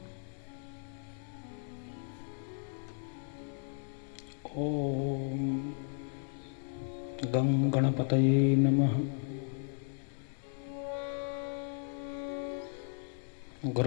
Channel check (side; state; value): right; silent; 54 dB below the other